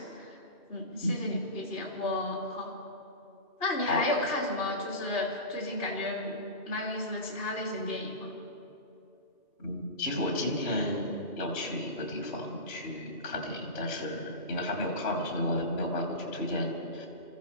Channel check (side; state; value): right; late; 2.8 ms